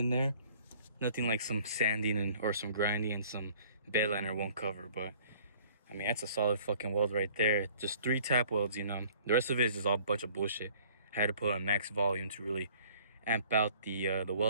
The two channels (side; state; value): both; inverted; correlation -0.54